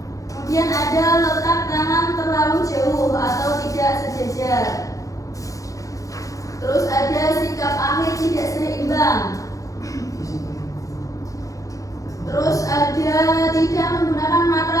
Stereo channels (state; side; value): late; right; 0.16 ms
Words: Kemudian ada letak tangan terlalu jauh atau tidak sejajar. Terus ada sikap akhir tidak seimbang. Terus ada tidak menggunakan